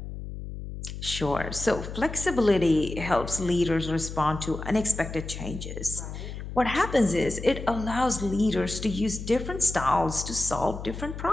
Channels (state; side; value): noise; left; hum, 9 dB below the sound